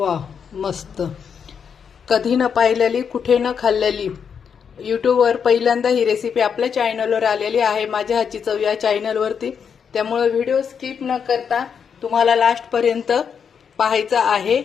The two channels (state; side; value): quieter; right; 7.0 dB